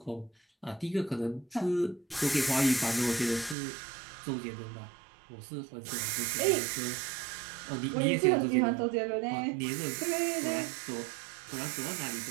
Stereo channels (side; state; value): left; drops out; at 3.6 s